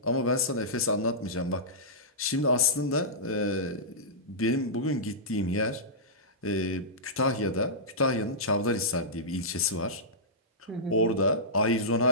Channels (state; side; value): normal; both; correlation -0.15